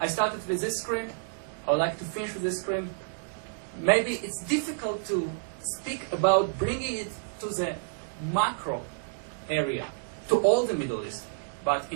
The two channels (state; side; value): silent; left; digital silence